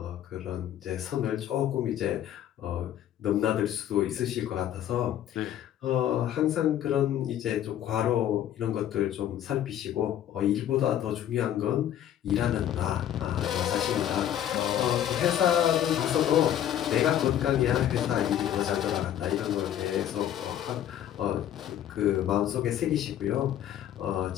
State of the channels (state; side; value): quieter; right; 11.0 dB